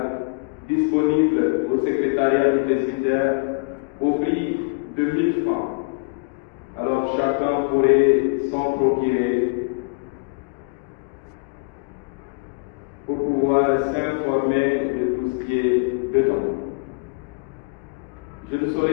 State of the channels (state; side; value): quieter; right; 33.2 dB